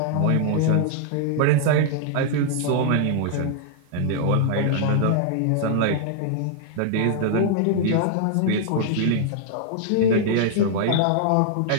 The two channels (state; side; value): different; both; correlation -0.01